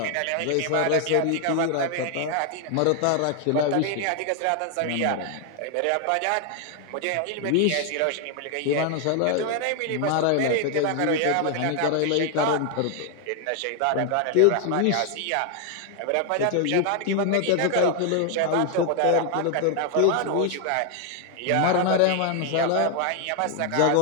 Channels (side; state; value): both; different; correlation 0.00